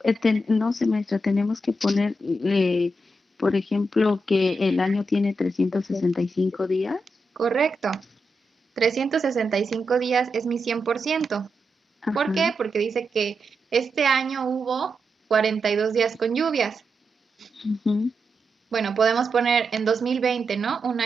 no sé, maestra, tenemos que poner, por ejemplo, que el año tiene 365 días. Correcto. 365 días es mi 100%. ¿Por Ajá. qué? Porque dice que este año hubo 42 días con lluvias. Ujú. Bueno, podemos poner en 2020, ¿no? Un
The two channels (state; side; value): normal; both; correlation 0.86